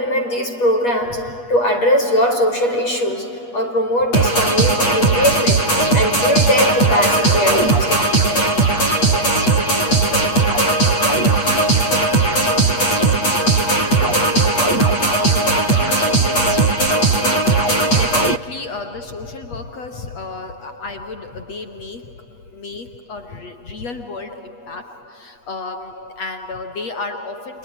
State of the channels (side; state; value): right; late; 8.3 ms